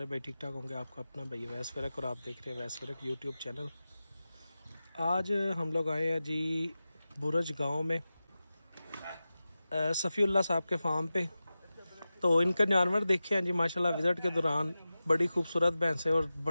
भाई ठीक ठाक होंगे। आपका अपना भाई वैस फ़रक और आप देख रहे हैं वैस फ़रक यूट्यूब चैनल। आज हम लोग आए हैं जी बुरज गांव में सफ़ीउल्लाह साहब के फार्म पे। तो इनका जानवर देखे हैं जी माशाल्लाह। विज़िट के दौरान बड़ी खूबसूरत भैंसें और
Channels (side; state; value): both; inverted; correlation -0.94